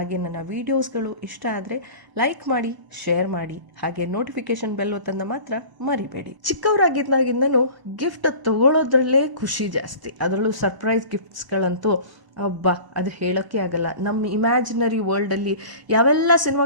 ನನ್ನ ವೀಡಿಯೋಸ್ಗಳು ಇಷ್ಟ ಆದರೆ ಲೈಕ್ ಮಾಡಿ, ಶೇರ್ ಮಾಡಿ, ಹಾಗೆ ನೋಟಿಫಿಕೇಶನ್ ಬೆಲ್ ಒತ್ತನ್ನ ಮಾತ್ರ ಮರಿಬೇಡಿ. ಚಿಕ್ಕವರಾಗಿದ್ದಾಗಿಂದನೂ ಗಿಫ್ಟ್ ತಗೊಳ್ಳೋದ್ರಲ್ಲೇ ಖುಷಿ ಜಾಸ್ತಿ. ಅದರಲ್ಲೂ ಸರ್ಪ್ರೈಸ್ ಗಿಫ್ಟ್ಸ್ಗಳಂತೂ ಅಬ್ಬಾ, ಅದು ಹೇಳೋಕ್ಕೆ ಆಗಲ್ಲ. ನಮ್ಮ ಇಮ್ಯಾಜಿನರಿ ವರ್ಲ್ಡಲ್ಲಿ ಯಾವೆಲ್ಲ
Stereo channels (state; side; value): late; left; 1.0 ms